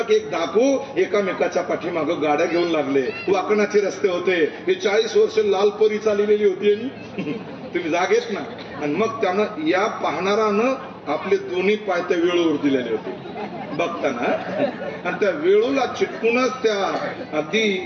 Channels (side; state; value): both; identical; correlation 1.00